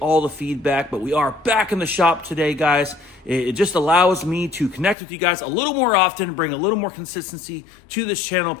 the feedback. But we are back in the shop today, guys. It just allows me to connect with you guys a little more often, bring a little more consistency to this channel,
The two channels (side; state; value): right; drops out; at 5.0 s